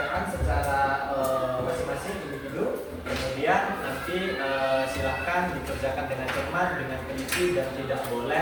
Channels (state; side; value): identical; both; correlation 1.00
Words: secara masing-masing individu. Kemudian nanti silakan dikerjakan dengan cermat, dengan teliti dan tidak